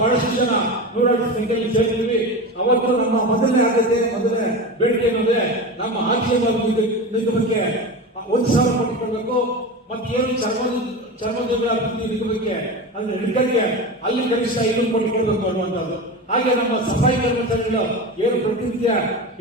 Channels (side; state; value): both; normal; correlation 0.26